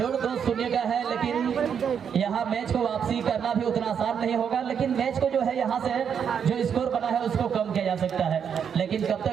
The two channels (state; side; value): quieter; left; 7.6 dB